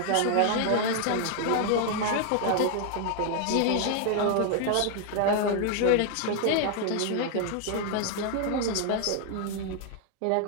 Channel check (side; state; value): both; different; correlation 0.00